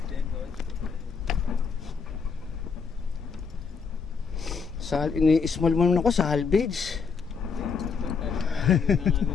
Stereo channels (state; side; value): quieter; right; 5.6 dB